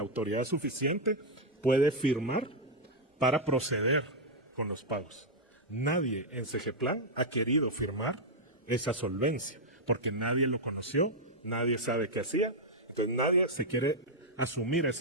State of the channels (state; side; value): normal; both; correlation -0.02